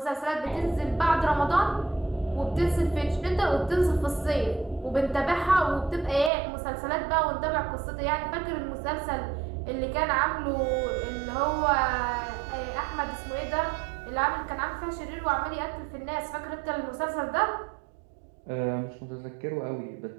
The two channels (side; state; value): left; drops out; at 6.3 s